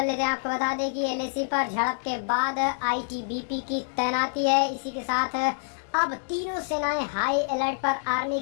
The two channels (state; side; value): silent; right; digital silence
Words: लेते हैं। आपको बता दें कि एलएसी पर झड़प के बाद आईटीबीपी की तैनाती है। इसी के साथ अब तीनों सेनाएं हाई अलर्ट पर, आर्मी